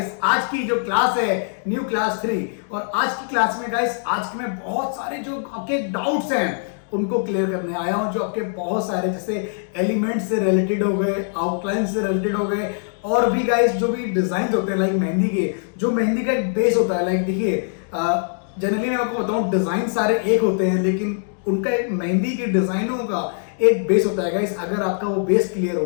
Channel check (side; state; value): right; silent; digital silence